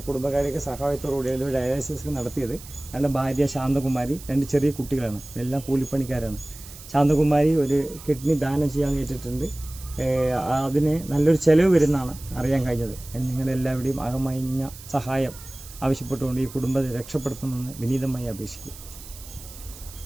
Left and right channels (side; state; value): right; noise; hiss, 17 dB below the sound